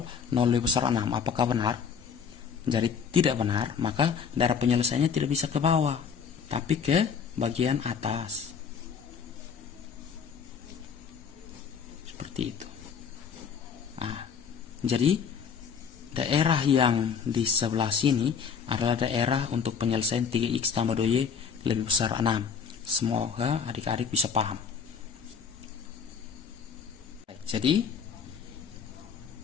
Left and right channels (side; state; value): right; quieter; 6.5 dB